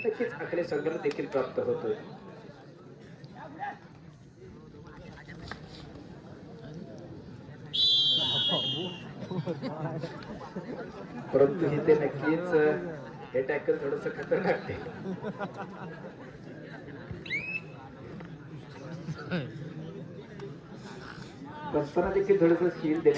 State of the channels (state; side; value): identical; both; correlation 1.00